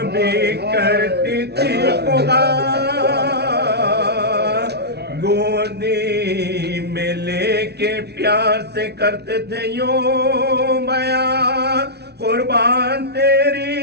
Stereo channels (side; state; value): left; late; 0.49 ms